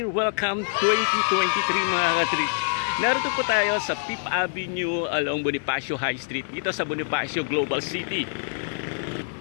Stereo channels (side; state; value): right; silent; digital silence